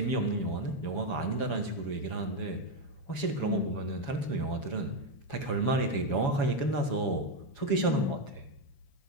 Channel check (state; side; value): late; right; 7.1 ms